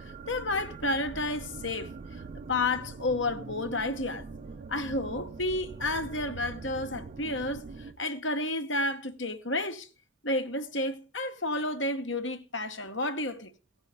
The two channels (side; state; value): both; normal; correlation 0.00